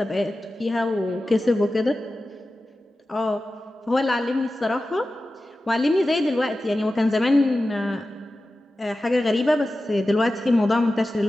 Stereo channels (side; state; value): both; normal; correlation 0.94